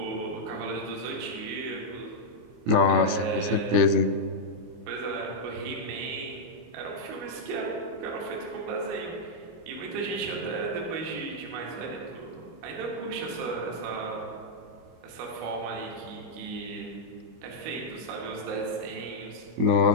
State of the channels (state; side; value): late; left; 25 ms